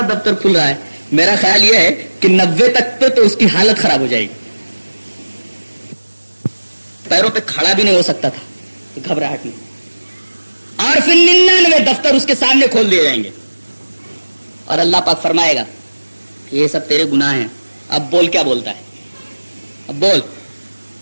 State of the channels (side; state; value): both; inverted; correlation -1.00